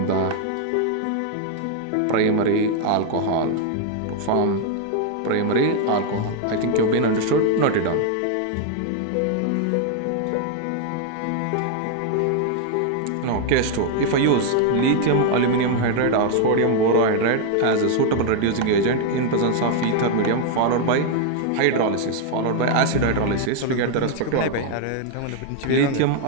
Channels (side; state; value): both; different; correlation 0.00